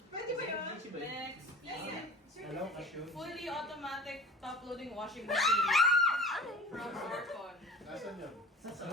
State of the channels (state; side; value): normal; both; correlation 0.39